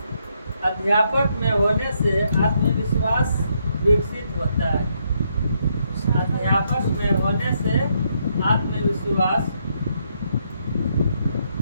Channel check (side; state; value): both; inverted; correlation -0.76